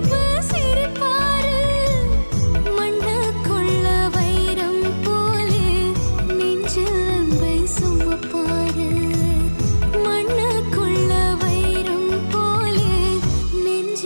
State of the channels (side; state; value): both; inverted; correlation -1.00